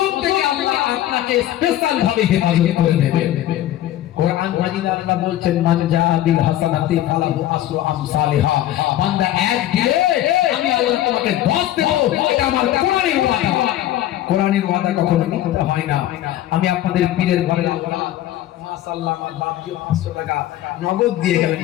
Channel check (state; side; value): quieter; right; 13.3 dB